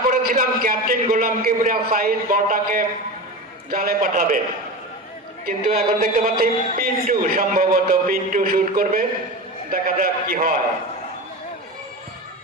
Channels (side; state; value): both; normal; correlation 0.26